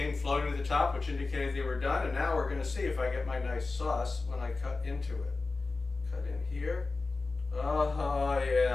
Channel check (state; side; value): quieter; right; 3.7 dB